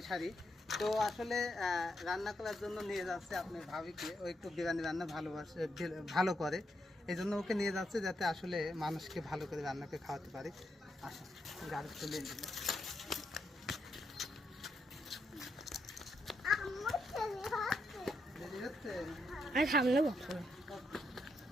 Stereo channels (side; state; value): both; normal; correlation 0.80